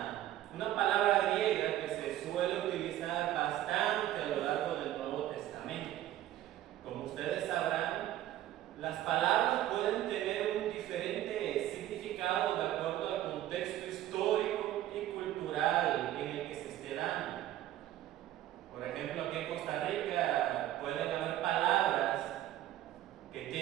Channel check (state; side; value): quieter; left; 13.3 dB